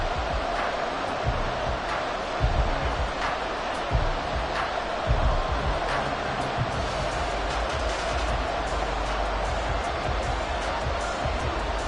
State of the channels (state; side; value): identical; both; correlation 1.00